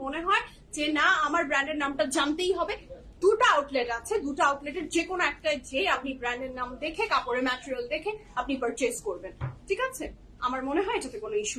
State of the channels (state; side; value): identical; both; correlation 1.00